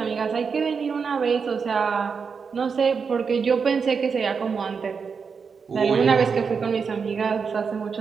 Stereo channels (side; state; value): left; quieter; 5.7 dB